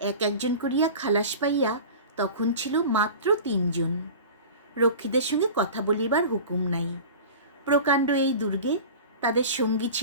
একজন করিয়া খালাস পাইয়া তখন ছিল মাত্র 3 জন। রক্ষীদের সঙ্গে কথা বলিবার হুকুম নাই। প্রকাণ্ড এই দুর্গে তাদের সঙ্গী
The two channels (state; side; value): inverted; both; correlation -0.35